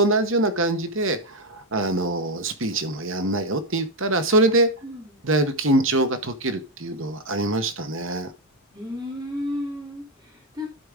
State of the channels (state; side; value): normal; both; correlation 0.06